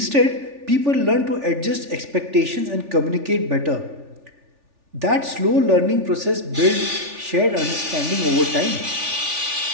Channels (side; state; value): left; late; 3.4 ms